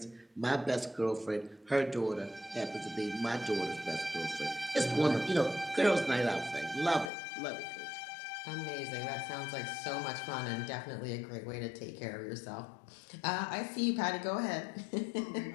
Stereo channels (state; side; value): drops out; right; at 7.1 s